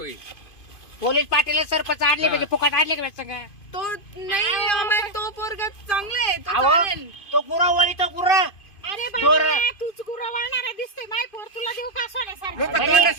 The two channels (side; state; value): right; late; 2.5 ms